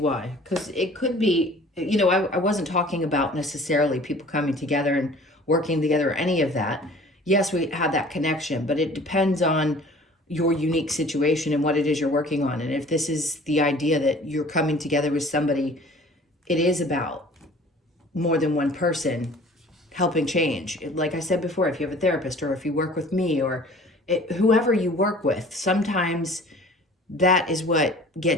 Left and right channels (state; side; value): normal; both; correlation 0.48